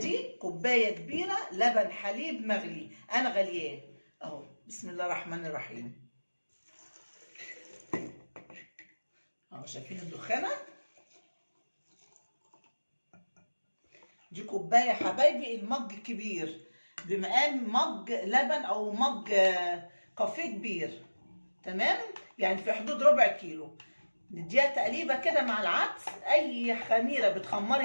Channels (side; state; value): both; inverted; correlation -1.00